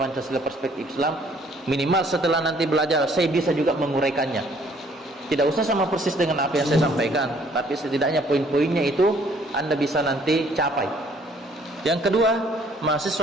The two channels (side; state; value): both; normal; correlation 0.61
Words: Pancasila perspektif Islam, minimal setelah nanti belajar saya bisa juga menguraikannya. Tidak usah sama persis dengan apa yang saya sampaikan, tapi setidaknya poin-poinnya itu Anda bisa nanti capai. Yang kedua,